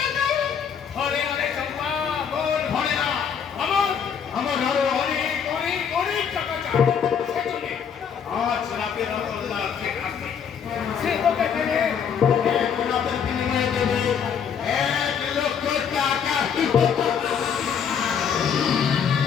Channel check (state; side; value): quieter; right; 7.4 dB